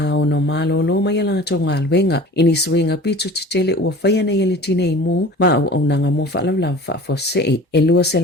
no malolo mai ala tau ngā luenga. Ini suinga pitu titele ua whaia nei ele tine i mū ma au nanga mo whaalaulau whaafosei. E lua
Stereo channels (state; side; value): normal; both; correlation 0.42